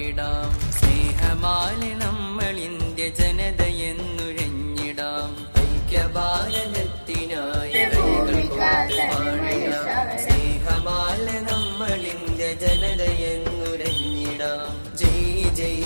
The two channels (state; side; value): inverted; both; correlation -1.00